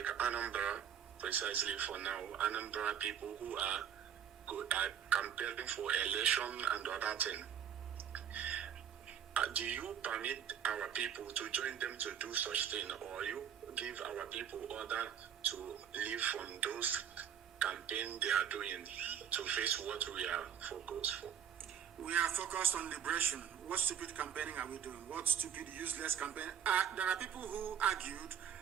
Anambra, precisely for now, Anambra people who are campaigning for election and other thing. Do you permit our people to join them to do such thing, or you give our people order to leave from those campaign they are doing to face what we are focused for? We are focused on liberation. What stupid campaigning are we doing? What stupid, useless campaign? There are people who argued,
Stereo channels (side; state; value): left; quieter; 8.8 dB